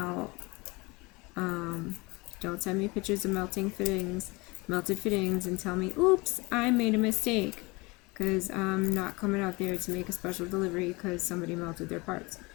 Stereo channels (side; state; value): right; quieter; 25.1 dB